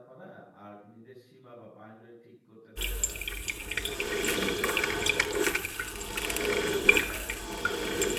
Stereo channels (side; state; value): both; identical; correlation 1.00